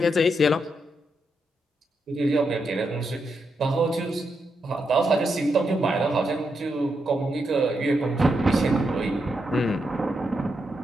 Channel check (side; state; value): both; normal; correlation 0.83